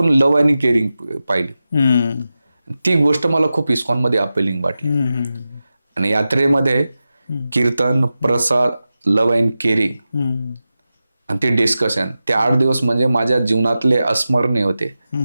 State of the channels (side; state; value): both; inverted; correlation -0.93